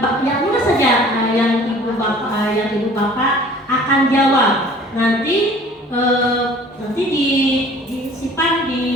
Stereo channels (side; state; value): both; normal; correlation 0.49